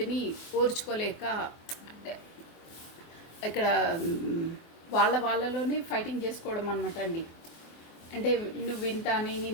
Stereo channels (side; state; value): right; late; 24 ms